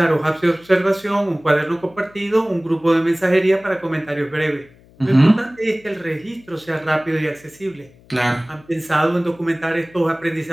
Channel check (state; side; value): noise; left; hum, 27 dB below the sound